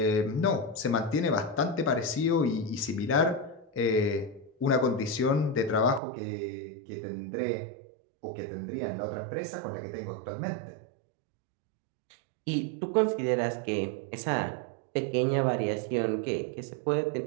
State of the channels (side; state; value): left; drops out; at 6.0 s